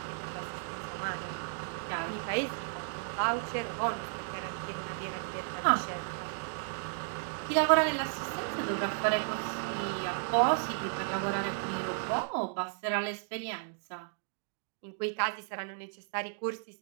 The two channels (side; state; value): left; silent; digital silence